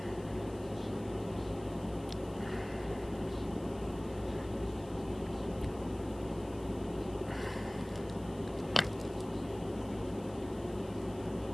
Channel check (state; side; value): noise; left; hiss, 22 dB below the sound